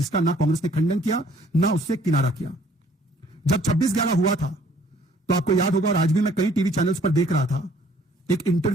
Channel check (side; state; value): both; normal; correlation 0.59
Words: ना कांग्रेस ने खंडन किया ना उससे किनारा किया। जब 26/11 हुआ था, तो आपको याद होगा, और आज भी मैं कई टीवी चैनल्स पर देख रहा था, एक